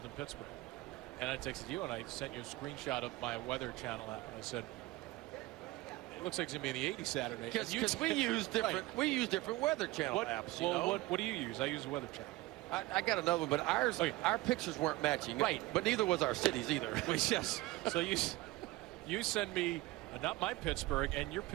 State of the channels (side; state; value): left; quieter; 19.4 dB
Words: in Pittsburgh. And I texted you and I sent you a screenshot of my Weather Channel app. And I said, it looks like it's going to be in the 80s Saturday. Because we use different Weather Channel apps. What do you use? I use the Weather Channel. I got another one, but our pictures weren't matching. Right. But neither was our cities either. Yes. So you send me not my Pittsburgh, and your